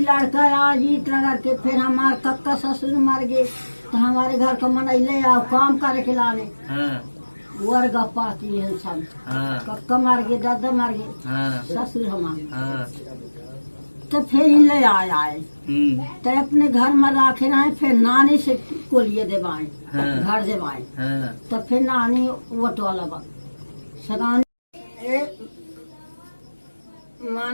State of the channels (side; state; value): both; inverted; correlation -1.00